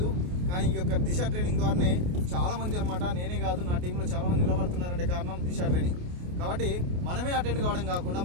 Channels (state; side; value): late; left; 28 ms